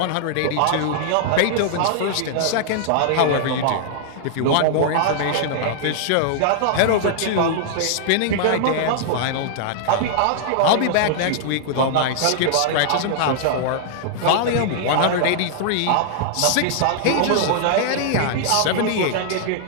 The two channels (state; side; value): different; both; correlation -0.01